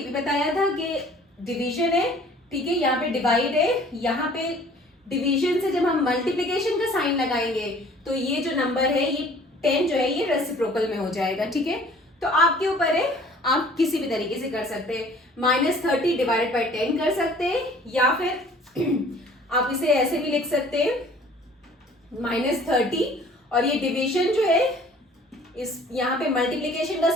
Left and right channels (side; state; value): both; normal; correlation 0.52